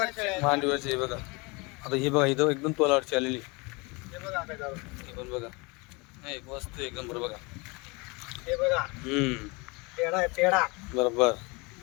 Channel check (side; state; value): right; quieter; 27.4 dB